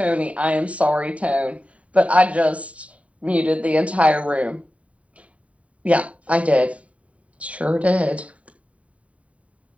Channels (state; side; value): late; left; 0.066 ms